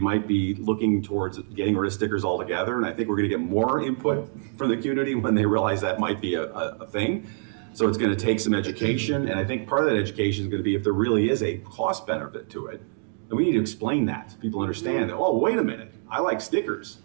be looking towards getting rid of stickers altogether. And I think we're going to get more input from the community when they realize that might be a thing. So it's going to take some education. And I think part of that education is going to be if there really is a cost benefit to it. And we need to explain that so people understand that, oh, wait a minute, I like stickers,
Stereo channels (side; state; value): left; silent; 61 dB below the other